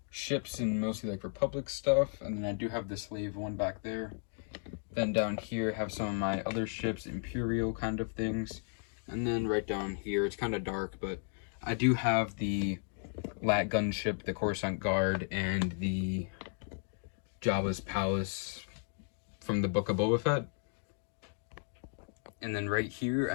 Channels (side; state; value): right; silent; 55 dB below the other